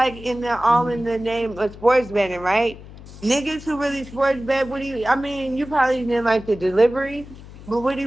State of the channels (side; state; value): left; noise; hum, 17 dB below the sound